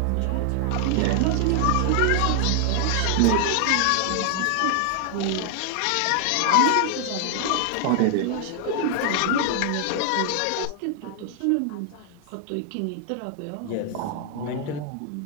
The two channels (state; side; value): different; both; correlation 0.00